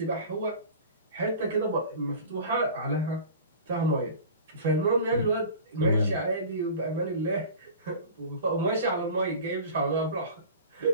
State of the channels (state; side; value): inverted; both; correlation -0.39